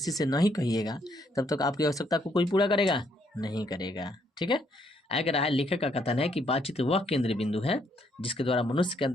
से नहीं कहिएगा तब तक आपकी आवश्यकता को कोई पूरा करेगा नहीं करेगा। ठीक है, अगर है लेखक का कथन है कि बातचीत वह केंद्र बिंदु है जिसके द्वारा मनुष्य के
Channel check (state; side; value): normal; both; correlation 0.71